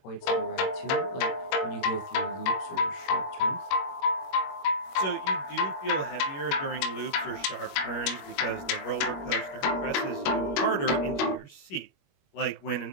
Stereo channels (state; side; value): late; right; 22 ms